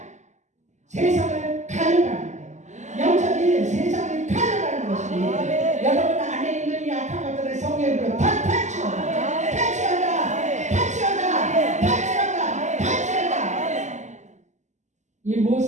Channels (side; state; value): left; late; 0.34 ms